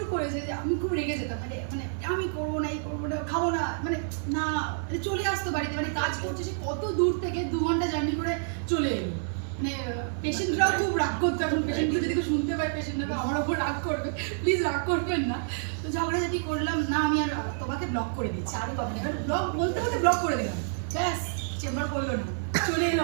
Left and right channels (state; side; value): silent; left; digital silence